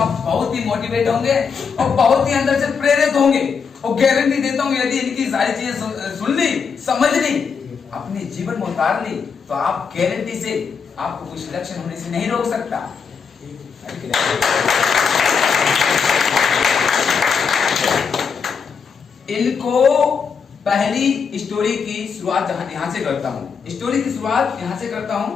बहुत ही मोटिवेट होंगे और बहुत ही अंदर से प्रेरित होंगे और गारंटी देता हूँ यदि इनकी सारी चीजें सुन ली, समझ ली, अपने जीवन में उतार ली तो आप गारंटी से आपको कुछ लक्षण होने से नहीं रोक सकता। इनको पहली स्टोरी की शुरुआत यहाँ से करता हूँ। स्टोरी की शुरुआत यहाँ से करता हूँ।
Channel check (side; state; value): right; quieter; 6.0 dB